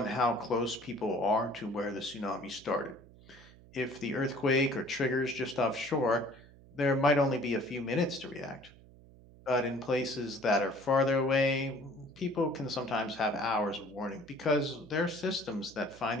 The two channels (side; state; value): right; noise; hum, 22 dB below the sound